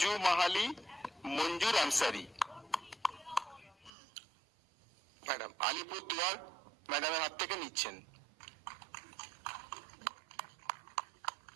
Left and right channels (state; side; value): drops out; left; at 3.9 s